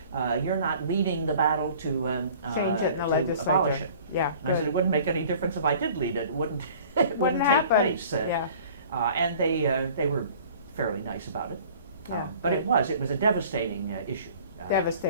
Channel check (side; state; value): both; inverted; correlation -0.49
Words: you're not leading the battle to abolish it. Yeah. And I said, it wouldn't make any difference if I did lead it. It wouldn't, it wouldn't take place. And they were fairly nice about it. But it was a devastating issue.